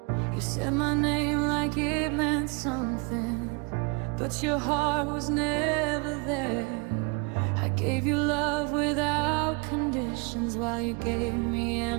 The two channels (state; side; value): quieter; left; 31.6 dB